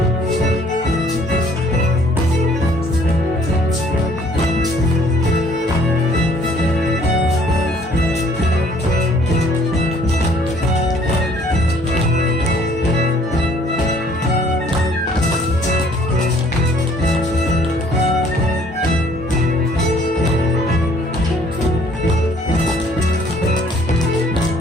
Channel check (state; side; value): normal; both; correlation 0.59